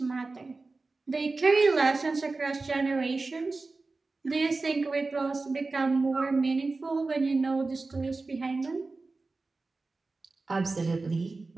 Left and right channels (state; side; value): quieter; left; 3.6 dB